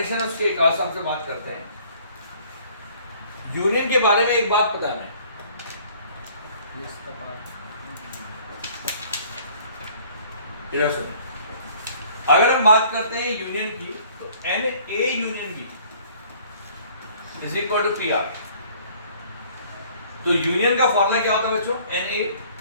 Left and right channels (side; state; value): both; inverted; correlation -0.56